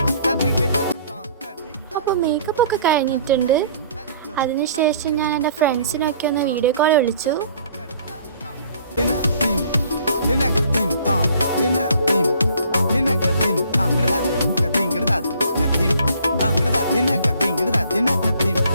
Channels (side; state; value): both; inverted; correlation -0.57